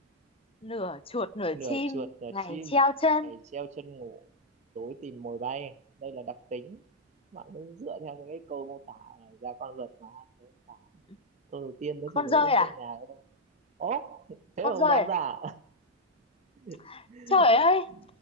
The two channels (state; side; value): normal; both; correlation -0.05